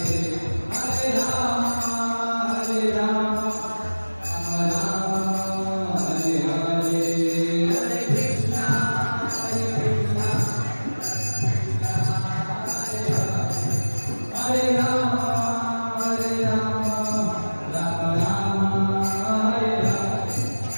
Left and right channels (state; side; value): inverted; both; correlation -1.00